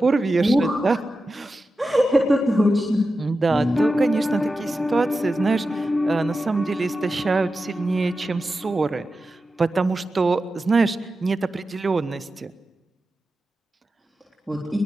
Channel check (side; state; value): both; normal; correlation 0.92